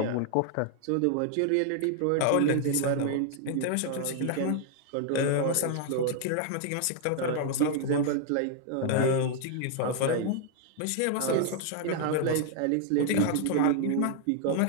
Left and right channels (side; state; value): both; different; correlation 0.00